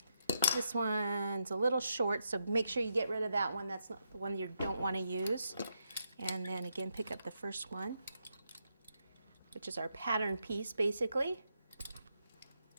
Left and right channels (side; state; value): both; inverted; correlation -0.82